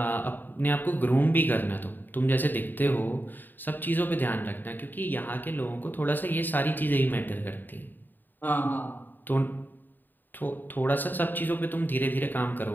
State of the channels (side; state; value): right; late; 0.090 ms